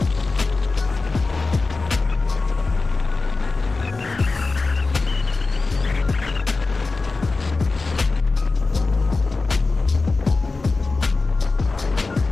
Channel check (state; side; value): quieter; right; 3.8 dB